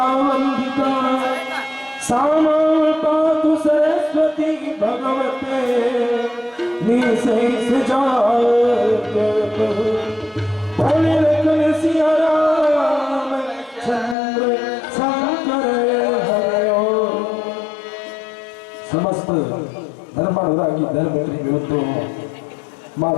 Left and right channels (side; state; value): right; drops out; at 14.2 s